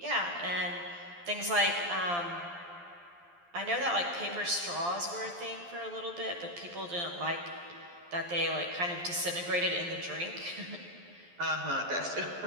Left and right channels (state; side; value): late; left; 12 ms